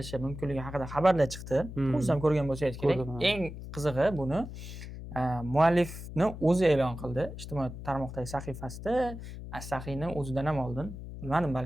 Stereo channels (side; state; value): left; noise; hum, 10 dB below the sound